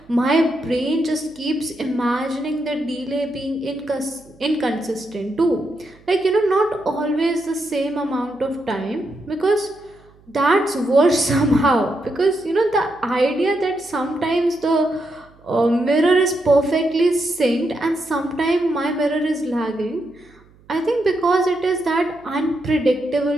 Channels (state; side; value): noise; right; hum, 28 dB below the sound